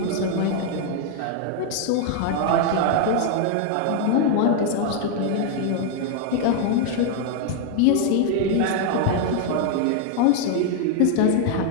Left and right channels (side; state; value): both; different; correlation 0.00